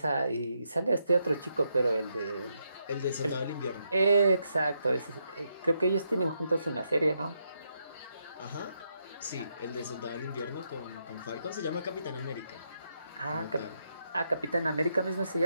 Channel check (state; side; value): inverted; both; correlation -0.80